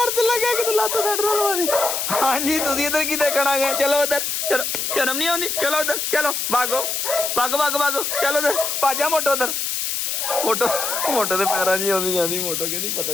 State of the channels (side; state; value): left; noise; hiss, 1 dB below the sound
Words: ਤੇ ਲੱਗਾ ਕਿ ਤੂੰ ਲੱਤ ਛੱਡ ਰਲਵਾ ਦੀ। ਹਾਂਜੀ ਤੁਸੀਂ ਇੱਧਰ ਕੀ ਦੇਖਣ ਆ ਗਏ? ਚਲੋ ਉੱਧਰ ਚਲੋ ਸ਼ਰਮ ਨਹੀਂ ਆਉਂਦੀ ਚਲੋ ਉੱਧਰ ਚਲੋ ਭਾਗੋ ਚਲੋ ਉੱਧਰ ਭਾਜਾ ਮੋਟੋ ਉੱਧਰ ਮੋਟੋ ਦੇ ਪੈਰਾਂ 'ਚ ਆਉਂਦੀ ਜਾਂਦੀ। ਮੋਟੋ ਕਹਿੰਦੀ ਪਤਾ